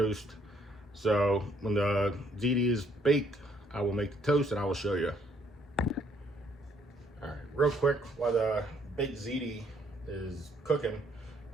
So when the ziti is baked, I will make the toast and I will show you. All right, real quick, while the baked ziti is cooking,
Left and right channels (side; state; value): both; normal; correlation 0.66